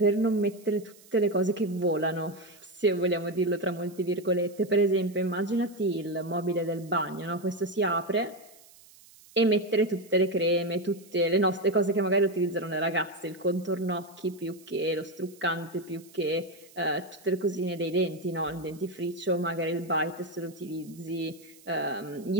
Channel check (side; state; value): right; noise; hiss, 24 dB below the sound